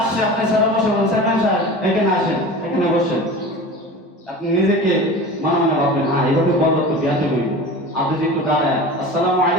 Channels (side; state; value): both; normal; correlation 0.35